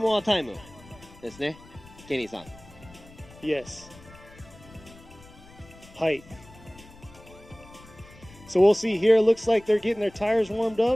more time ですね。ケニーさん。 Yes. Height. So we'll see here. Looks like they're getting their tires warmed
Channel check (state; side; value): noise; left; rumble, 22 dB below the sound